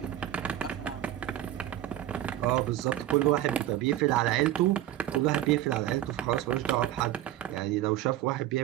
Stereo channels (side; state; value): left; quieter; 13.1 dB